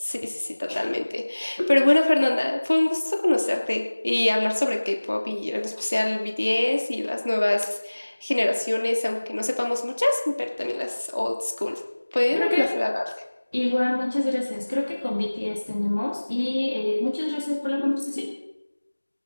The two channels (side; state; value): both; inverted; correlation -1.00